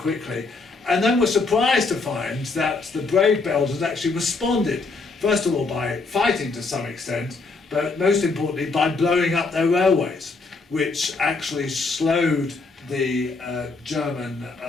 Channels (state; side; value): quieter; right; 3.9 dB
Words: and then were surprised to find that the brave Belgians actually responded, first of all by fighting to some extent, but most importantly by blowing up their railways, which actually slowed the German